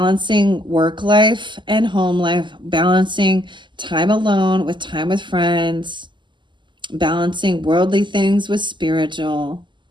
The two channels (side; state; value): left; late; 0.23 ms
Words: work life and home life, balancing time alone with time with friends, balancing worldly things with spiritual.